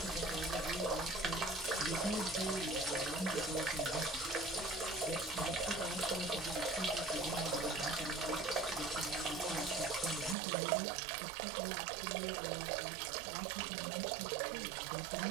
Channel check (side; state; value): left; drops out; at 10.4 s